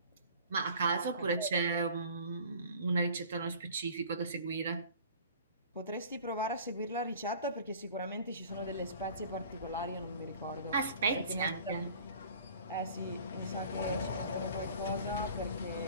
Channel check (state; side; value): inverted; both; correlation -0.47